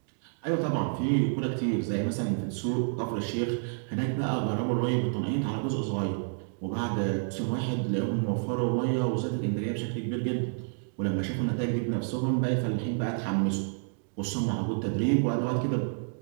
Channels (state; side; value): silent; left; digital silence